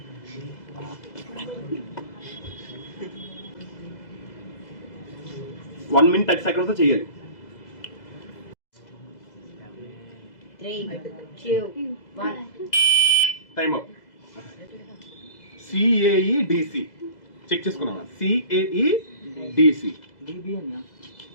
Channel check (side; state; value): right; late; 2.0 ms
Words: వన్ మినిట్ 30 seconds చేయాలి. 3, 2, 1. Time up. CAE DC check చేసుకున్నాను. CAE DC.